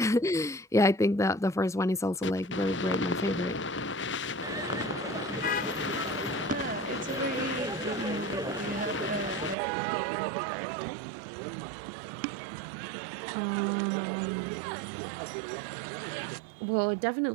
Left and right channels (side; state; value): left; drops out; at 9.6 s